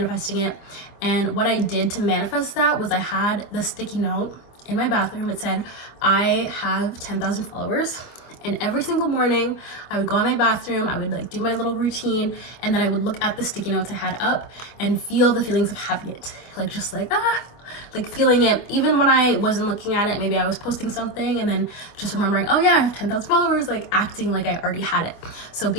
it. And what I did to manifest that was I had the sticky note in my bathroom. It said, I have 10,000 followers. And every single morning I would go in my bathroom, I would like do my little routine, and then I would look at the sticky notes I had up and feel the feelings of having it. Like just like, like feeling it. Even when I wasn't looking at it, maybe I was posting something and then just remembering, oh yeah, I have 10,000 followers, like acting like I already had it. So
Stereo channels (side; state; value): right; late; 25 ms